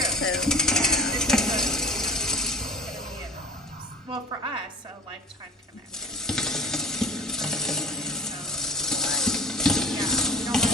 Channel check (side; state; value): both; normal; correlation 0.42